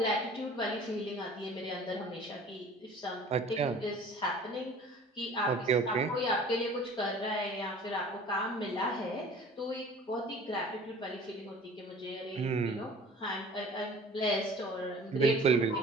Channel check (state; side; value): normal; both; correlation 0.46